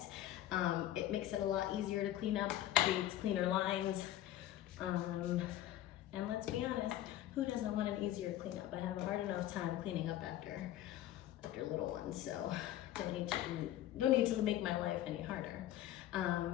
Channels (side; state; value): right; quieter; 13.2 dB